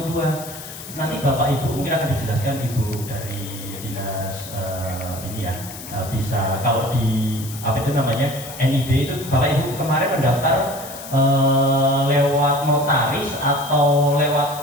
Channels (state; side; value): noise; left; hiss, 13 dB below the sound